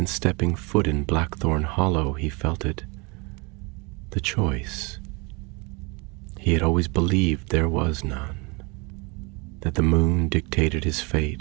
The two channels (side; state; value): left; quieter; 28.8 dB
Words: stepping foot in Blackthorn Hollow he felt it. The choice. He had always believed there was none, that the moon dictated his